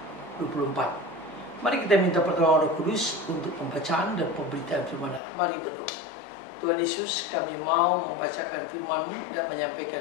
Mari kita minta pertolongan Roh Kudus untuk pembacaan dan pemberitaan firman Allah. Mari berdoa. Tuhan Yesus, kami mau membacakan firman-Mu dan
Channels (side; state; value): right; drops out; at 5.2 s